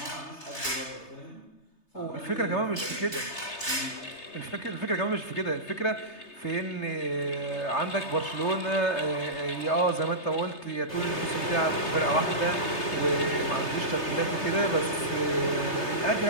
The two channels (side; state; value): right; late; 3.3 ms